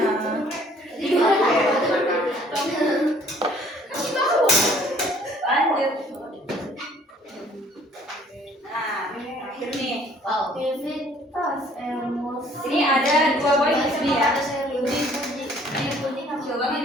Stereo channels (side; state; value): both; normal; correlation 0.58